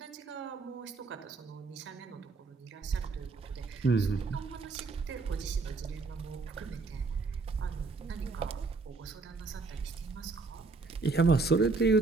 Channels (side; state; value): left; quieter; 4.0 dB